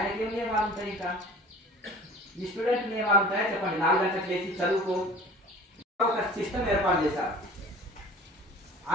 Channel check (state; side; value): normal; both; correlation 0.44